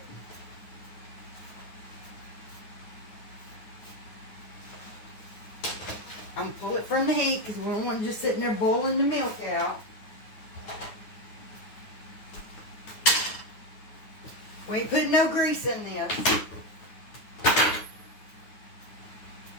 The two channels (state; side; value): late; right; 9.5 ms